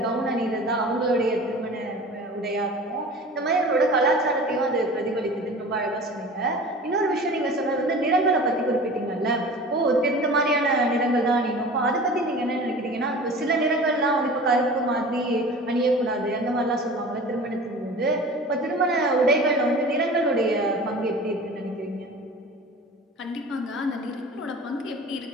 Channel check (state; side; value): normal; both; correlation 0.39